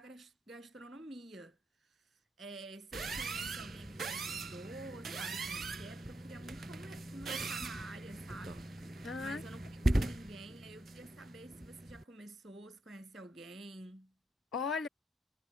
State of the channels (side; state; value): both; normal; correlation 0.83